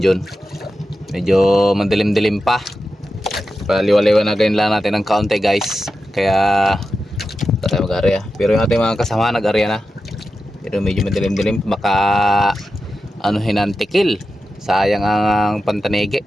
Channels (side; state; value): both; normal; correlation 0.91